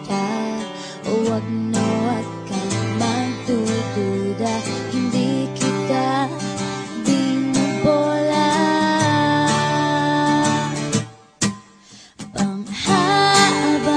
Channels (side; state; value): both; identical; correlation 1.00